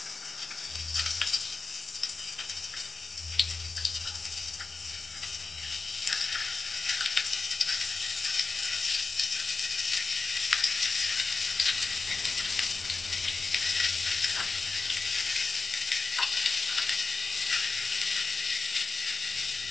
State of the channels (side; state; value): right; quieter; 4.0 dB